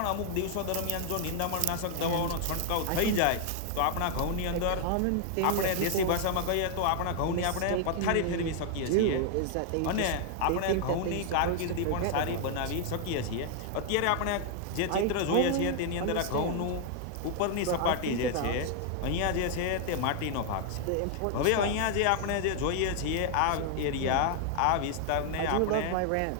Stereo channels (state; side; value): different; both; correlation 0.00